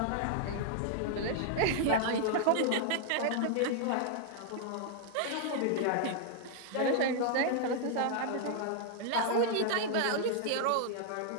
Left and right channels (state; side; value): different; both; correlation -0.01